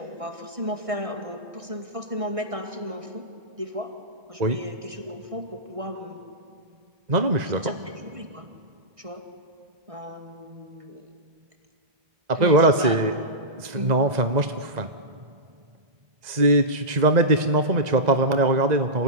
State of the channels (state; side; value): late; left; 1.9 ms